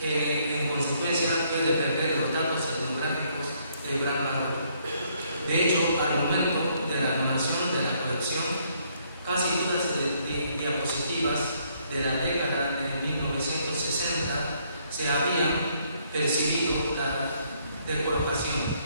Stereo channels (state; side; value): inverted; both; correlation -0.69